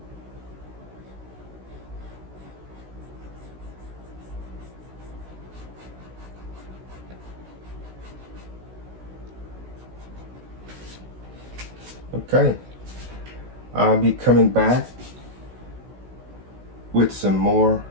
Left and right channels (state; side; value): late; left; 16 ms